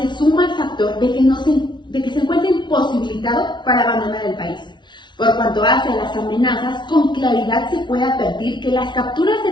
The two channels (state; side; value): late; right; 0.22 ms